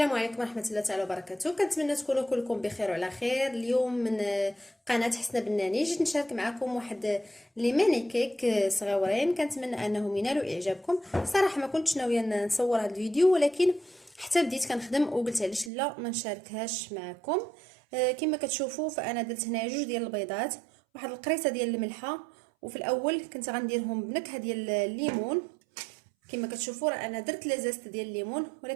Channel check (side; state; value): left; drops out; at 15.7 s